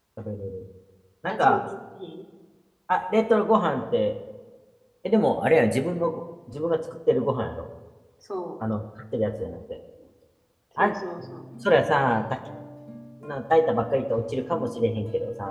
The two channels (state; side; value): identical; both; correlation 1.00